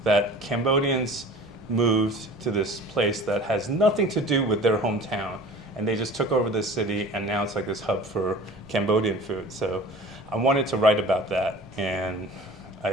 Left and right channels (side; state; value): right; noise; rumble, 28 dB below the sound